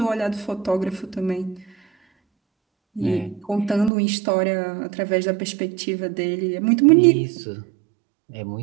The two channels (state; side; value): drops out; left; at 3.9 s